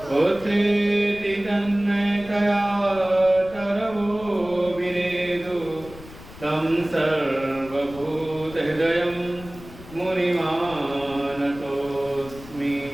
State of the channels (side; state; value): left; noise; rumble, 17 dB below the sound